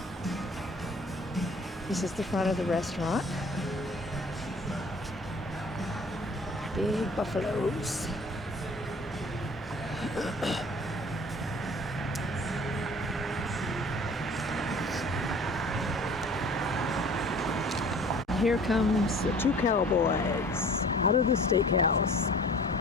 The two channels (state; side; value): normal; both; correlation 0.48